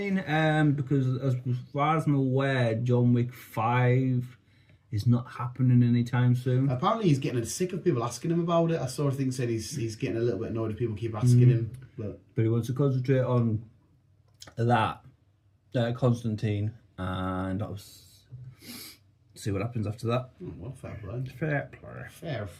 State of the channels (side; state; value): both; identical; correlation 1.00